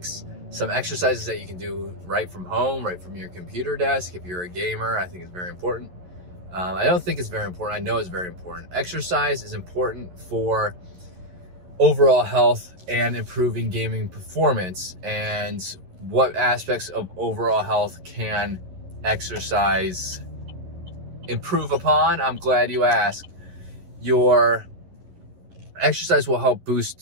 some exercises that you can do right from home, right from your computer desk. If you're a gamer, I think it's very important. I don't think it's very important. I know it's very important. Exercise is important for overall health and improving gaming performance. And what aspects of overall health can exercise improve upon? I'm glad you asked. Your exercise will help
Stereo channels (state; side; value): late; left; 11 ms